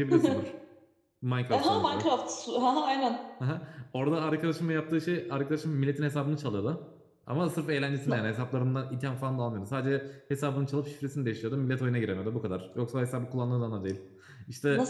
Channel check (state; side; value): identical; both; correlation 1.00